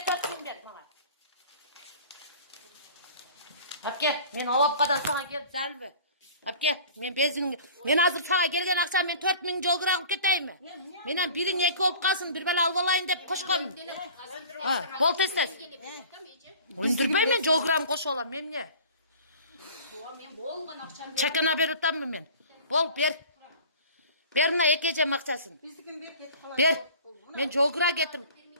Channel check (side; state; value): both; inverted; correlation -0.44